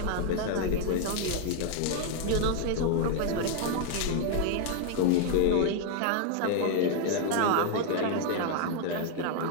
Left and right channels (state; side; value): different; both; correlation 0.00